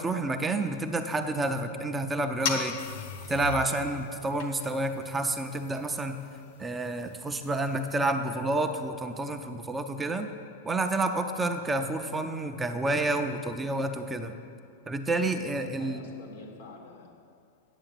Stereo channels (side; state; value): both; normal; correlation 0.58